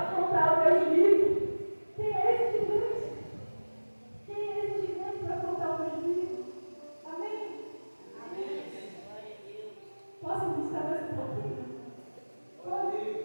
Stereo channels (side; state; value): both; inverted; correlation -1.00